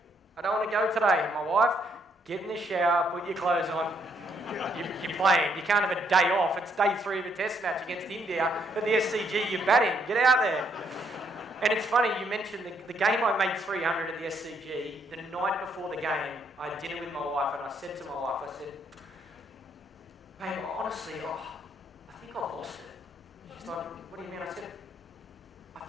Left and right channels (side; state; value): both; normal; correlation 0.72